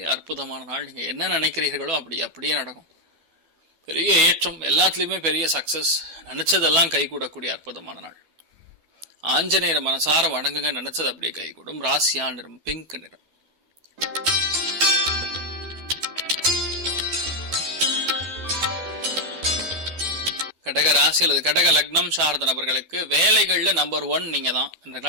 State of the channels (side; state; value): left; late; 12 ms